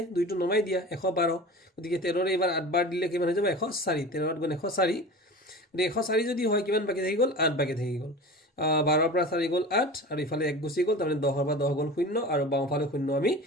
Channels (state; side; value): normal; both; correlation 0.34